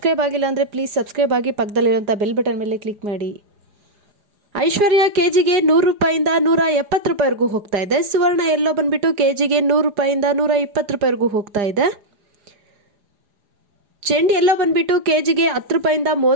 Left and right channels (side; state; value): left; late; 4.9 ms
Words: ಆಗಿಲ್ಲ ಅಂದರೆ ಪ್ಲೀಸ್ ಸಬ್ಸ್ಕ್ರೈಬ್ ಆಗಿ ಪಕ್ಕದಲ್ಲಿರುವಂಥ ಬೆಲ್ ಬಟನ್ ಮೇಲೆ ಕ್ಲಿಕ್ ಮಾಡಿ. ಐಶ್ವರ್ಯ ಕೆಜಿಗೆ 100 ರೂಪಾಯಿಂದ 170 ರೂಪಾಯಿವರೆಗೂ ಹೋಗ್ತಾ ಇದೆ. ಸುವರ್ಣ ಎಲ್ಲೋ ಬಂದುಬಿಟ್ಟು ಕೆಜಿಗೆ 100 ರೂಪಾಯಿಂದ 120 ರೂಪಾಯಿವರೆಗೂ ಹೋಗ್ತಾ ಇದೆ. ಚೆಂಡು ಎಲ್ಲೋ ಬಂದುಬಿಟ್ಟು ಕೆಜಿಗೆ 10 ರೂಪಾಯಿಂದ